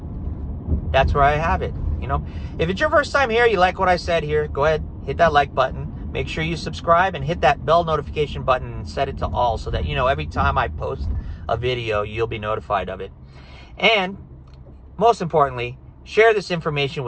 that's where I have it. If it's your first time here, you like what I said here, go ahead, hit that like button. Make sure you subscribe and hit that bell notification button and set it to all so that, every time I post a video, you'll be notified of it. And most importantly, share this information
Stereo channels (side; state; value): both; identical; correlation 1.00